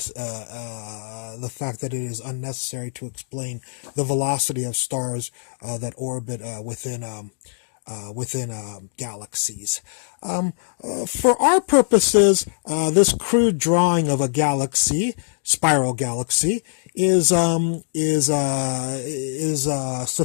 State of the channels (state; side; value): silent; right; digital silence